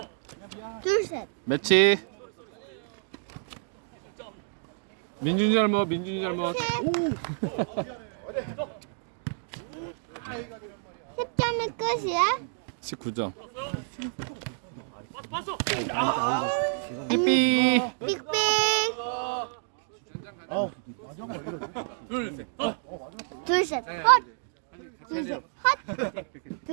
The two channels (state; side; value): silent; left; digital silence